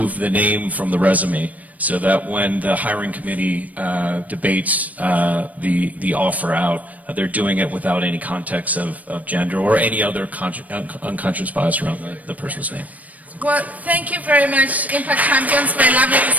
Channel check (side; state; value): left; late; 0.072 ms